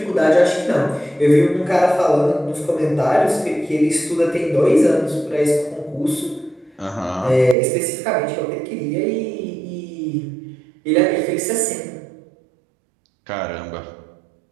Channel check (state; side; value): drops out; left; at 7.6 s